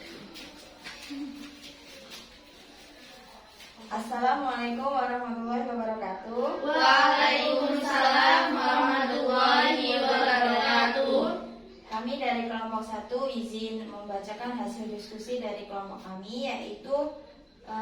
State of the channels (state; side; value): identical; both; correlation 1.00